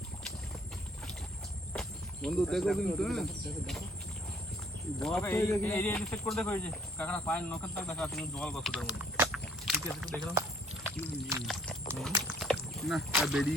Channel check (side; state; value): both; normal; correlation 0.61